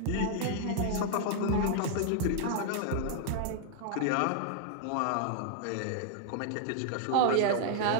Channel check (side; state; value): both; different; correlation -0.01